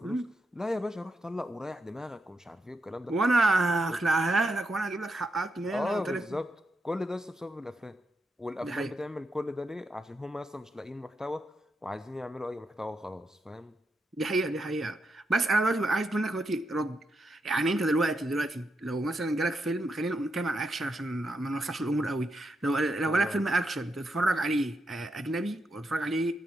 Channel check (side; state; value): both; normal; correlation 0.83